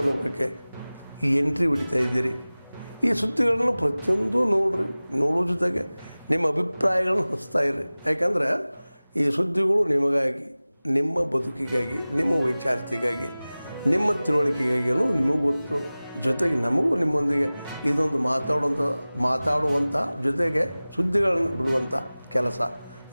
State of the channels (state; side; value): inverted; both; correlation -0.98